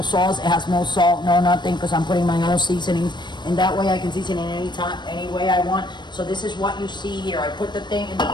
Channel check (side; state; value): right; late; 0.22 ms